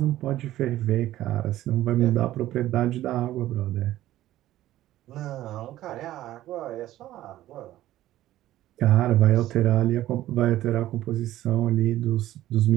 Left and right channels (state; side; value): quieter; left; 14.4 dB